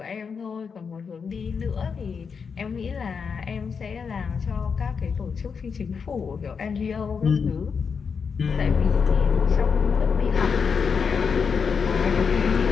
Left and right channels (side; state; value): right; quieter; 5.9 dB